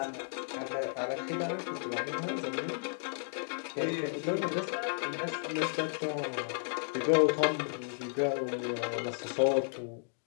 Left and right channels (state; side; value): silent; right; digital silence